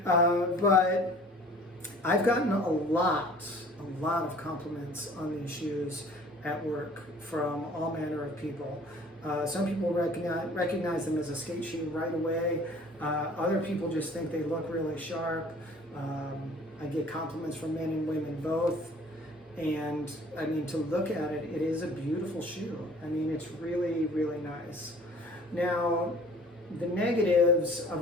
But I've gotten a lot of compliments on these shoes at work from all manner of people. Some people recognize them as a skate shoe right away. Other people just think they look really sharp. I get compliments from men and women both. And I mean, to look at it, it is a beautiful shoe. I mean, it's really, really nice. Now, the negatives of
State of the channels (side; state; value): both; normal; correlation 0.50